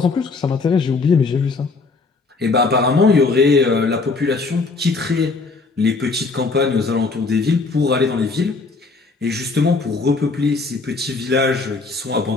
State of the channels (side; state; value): right; quieter; 4.0 dB